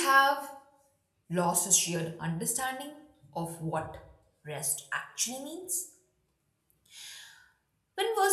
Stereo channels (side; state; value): both; identical; correlation 1.00